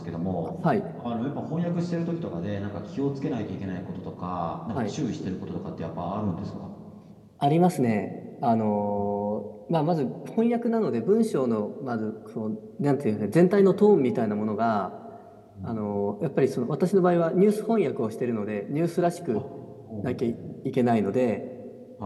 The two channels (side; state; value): both; identical; correlation 1.00